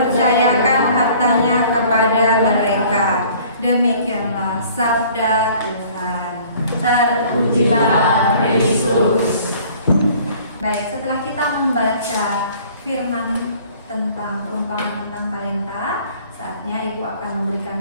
hartanya kepada mereka. Demikianlah sabda Tuhan. Terpujilah Yesus. Baik, setelah kita membaca firman tentang perumpamaan tentang talenta, saatnya Ibu akan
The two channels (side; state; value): both; inverted; correlation -0.53